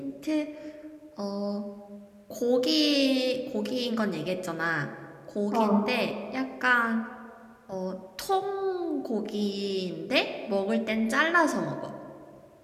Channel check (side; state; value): both; identical; correlation 1.00